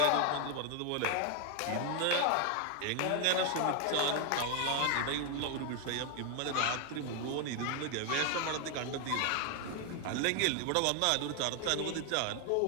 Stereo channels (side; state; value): both; different; correlation 0.00